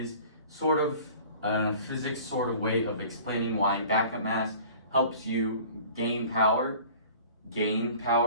sort of a physics sort of way of explaining why backup mass helps you gain power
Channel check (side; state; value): both; inverted; correlation -0.46